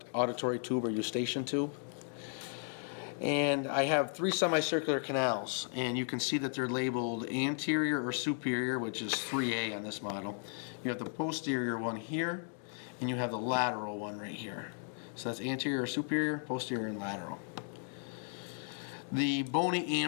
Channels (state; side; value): silent; right; 54 dB below the other